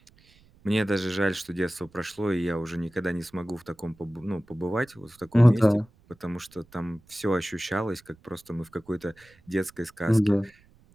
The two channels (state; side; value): noise; right; rumble, 30 dB below the sound